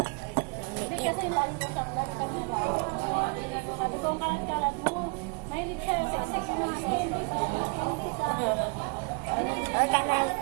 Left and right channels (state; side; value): quieter; left; 33.8 dB